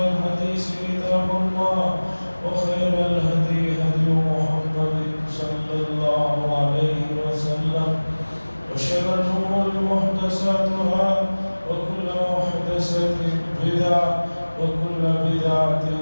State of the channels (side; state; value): both; inverted; correlation -1.00